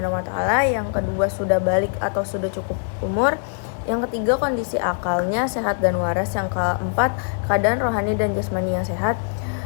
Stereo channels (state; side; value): silent; right; digital silence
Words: wa taala. Yang kedua, sudah balik atau sudah cukup umur. Yang ketiga, kondisi akalnya sehat dan waras. Yang keempat, keadaan rohani dan jasmani yang sehat.